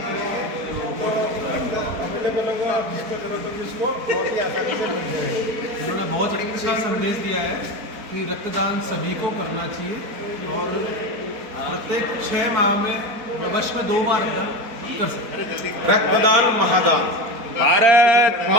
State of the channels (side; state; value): left; late; 4.4 ms